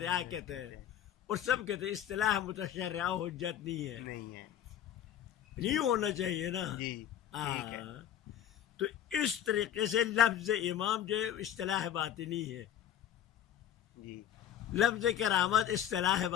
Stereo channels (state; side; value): quieter; right; 10.5 dB